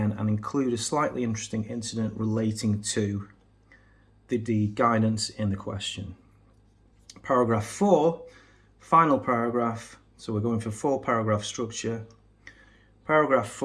and include a slightly interesting incident relating to the guidance in the question. Paragraph 4, final paragraph. So we're going for 4-paragraph structure. Paragraph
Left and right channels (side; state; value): both; identical; correlation 1.00